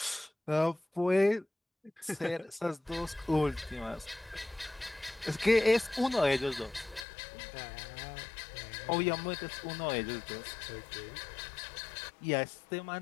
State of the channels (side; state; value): right; drops out; at 7.1 s